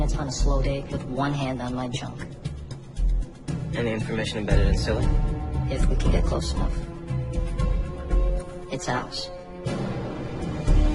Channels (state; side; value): identical; both; correlation 1.00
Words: on a slow day with one hand on my junk. Any information embedded in Scylla? If we can get close enough. It's ours.